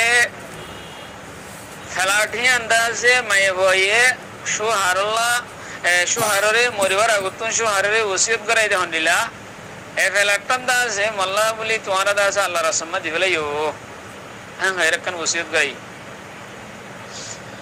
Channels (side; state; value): both; identical; correlation 1.00